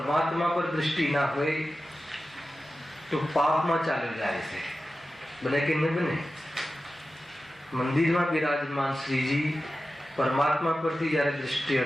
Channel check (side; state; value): both; normal; correlation 0.94